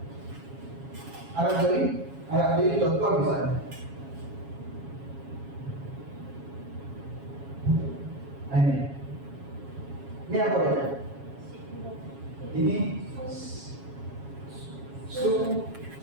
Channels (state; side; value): late; left; 7.3 ms